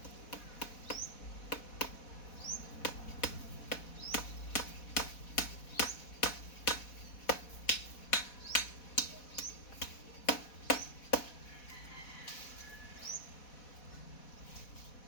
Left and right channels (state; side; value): late; right; 4.1 ms